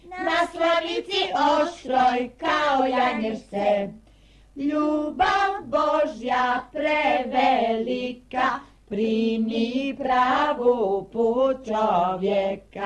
na slavici oštroj kao janješce. Ljubav Božja prevelika, primi pravu put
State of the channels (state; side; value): identical; both; correlation 1.00